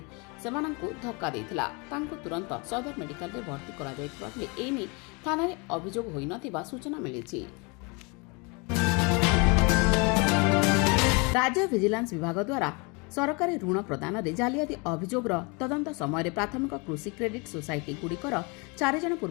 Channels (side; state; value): right; quieter; 30.1 dB